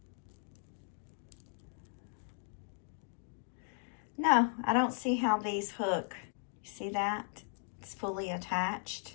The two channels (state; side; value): silent; right; 53 dB below the other